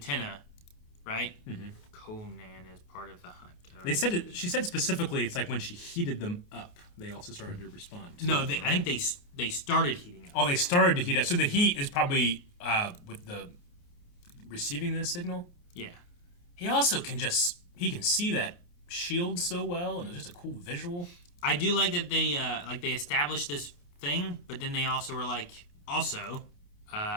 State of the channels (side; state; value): right; late; 29 ms